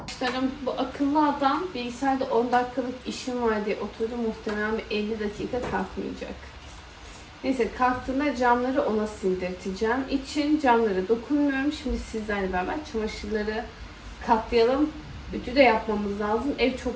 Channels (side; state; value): both; identical; correlation 1.00